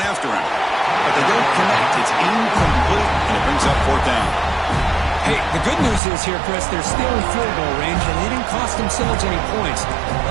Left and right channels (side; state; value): left; drops out; at 6.0 s